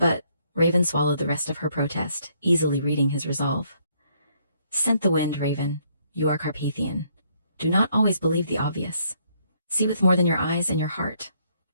Raven swallowed the rest of her protest, easily reading his resolve. Scent the wind, Raven. You are Carpathian. Do not always believe the obvious. See with more than your eyes and your heart.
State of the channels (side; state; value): both; inverted; correlation -0.69